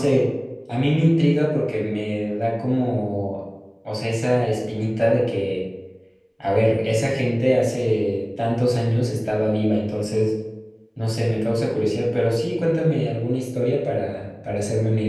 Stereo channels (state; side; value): identical; both; correlation 1.00